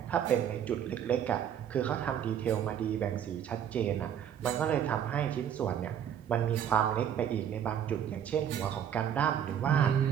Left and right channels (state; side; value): quieter; left; 9.3 dB